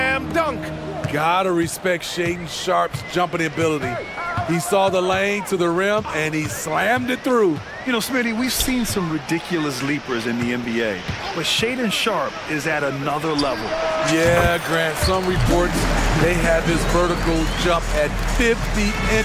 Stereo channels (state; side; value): identical; both; correlation 1.00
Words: dunk. Gotta respect Shaedon Sharp's jumping ability. He saw the lane to the rim, and he slammed it through. You know, Smitty, we've seen some ridiculous leapers in the NBA, but Shaedon Sharp is at another level. Yeah, Grant, some reports they have his vertical jump at 50